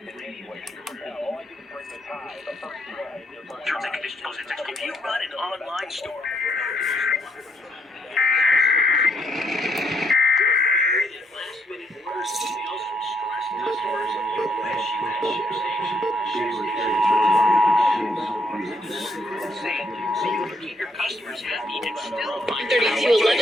and conditions. If you run an online store. So you can keep your customers happy and still find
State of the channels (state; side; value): normal; both; correlation 0.73